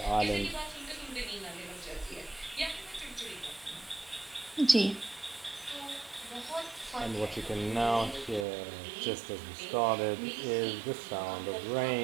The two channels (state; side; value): drops out; left; at 8.5 s